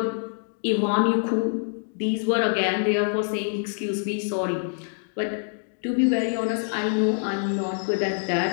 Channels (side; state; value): right; silent; digital silence